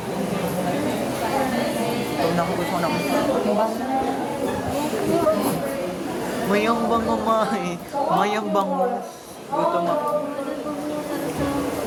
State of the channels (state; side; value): identical; both; correlation 1.00